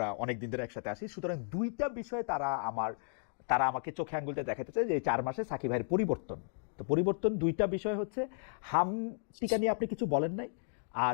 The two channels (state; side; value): silent; right; digital silence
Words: অনেক দিন ধরে একসাথে আসি, সুতরাং দুইটা বিষয়ে তারা আমাকে চোখে আঙ্গুলটা দেখাতে চায় যে এই 4 মাসে সাকিব ভাইয়ের পরিবর্তন। তো পরিবর্তন দুইটা বিষয় হচ্ছে, হাম টিকা নিয়ে আপনি কিছু বলেন নাই,